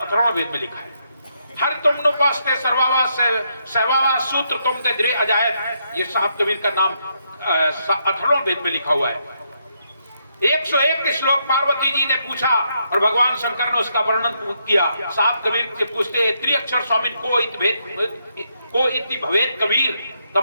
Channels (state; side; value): inverted; both; correlation -0.78